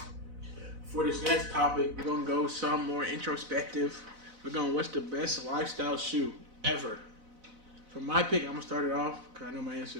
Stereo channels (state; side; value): late; left; 4.0 ms